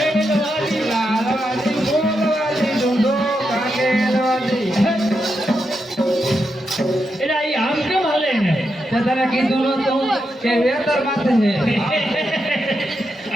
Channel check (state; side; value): normal; both; correlation 0.85